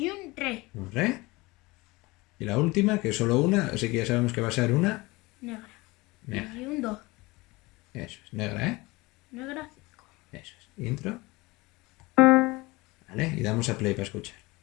un re. Un re. Y la última, que es solo una, así que ya sabemos que va a ser una Negra. negra. Y un do. Eso es, negra, ¿eh? Negra. Eso es. Intro. Vale, y damos a play para escuchar.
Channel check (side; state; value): right; quieter; 22.6 dB